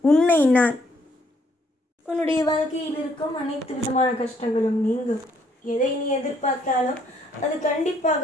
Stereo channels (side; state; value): both; normal; correlation 0.67